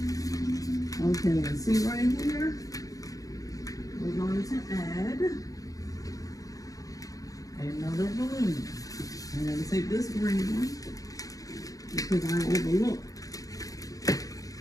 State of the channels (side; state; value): right; late; 0.17 ms